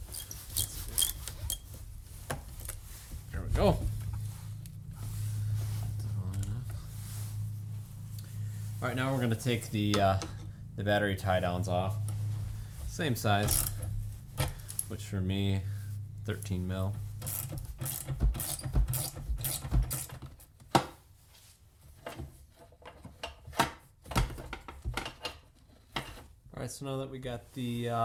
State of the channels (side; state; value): both; identical; correlation 1.00